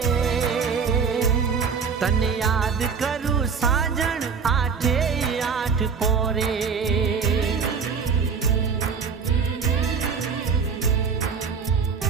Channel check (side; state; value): left; quieter; 5.9 dB